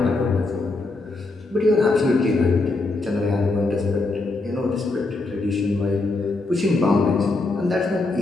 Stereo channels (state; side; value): quieter; right; 3.3 dB